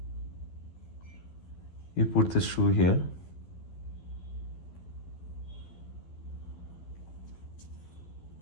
you put the shoe here,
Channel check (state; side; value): late; right; 12 ms